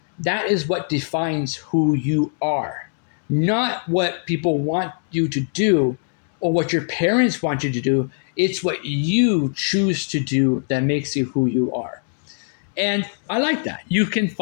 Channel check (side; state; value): right; silent; digital silence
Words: that is what defines who you are, not what people want you to do or what your parents want you to do. It's what you choose to do that makes you who you are. And I like that. You